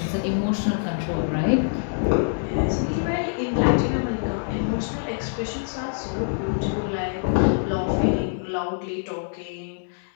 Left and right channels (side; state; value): right; silent; digital silence